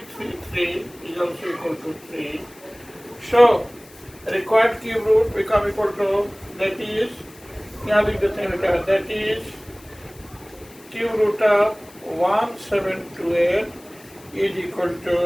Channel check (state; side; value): noise; left; hiss, 24 dB below the sound